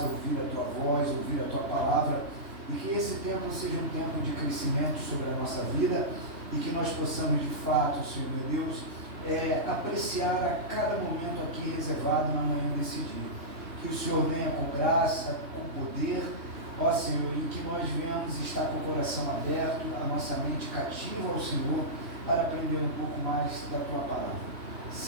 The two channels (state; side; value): late; left; 3.2 ms